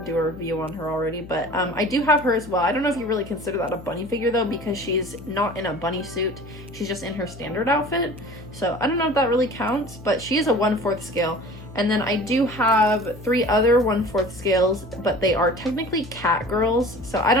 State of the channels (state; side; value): noise; left; hum, 16 dB below the sound